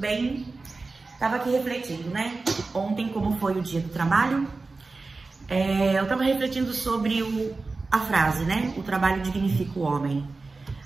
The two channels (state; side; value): quieter; left; 3.7 dB